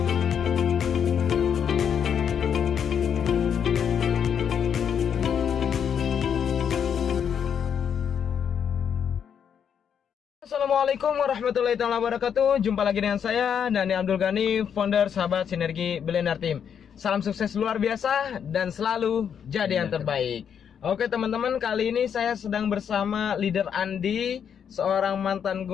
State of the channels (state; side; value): quieter; right; 7.9 dB